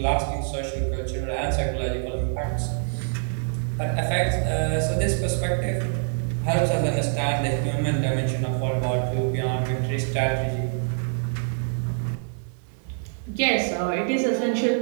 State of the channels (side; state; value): left; silent; digital silence